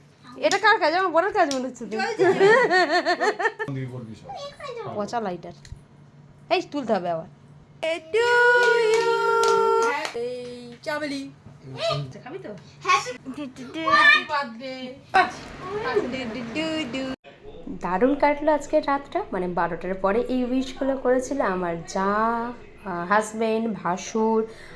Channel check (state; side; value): identical; both; correlation 1.00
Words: এটা কার কাজ? আমার বড় কাজ মনে হচ্ছে তো। পচা লাইটার এই তুলতে হবে আবার। চাবলি খাবি তো? দারুণ কাটলো আজকের রাতটা, মানে 12টার পরে এই উইশগুলো করেছিল আমার যা, হাজব্যান্ড, ভাসুর,